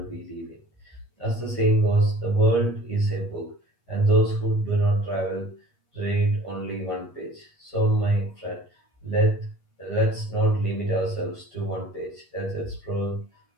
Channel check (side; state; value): right; late; 8.4 ms